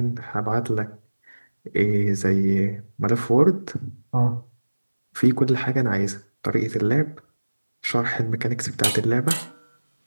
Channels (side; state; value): both; inverted; correlation -1.00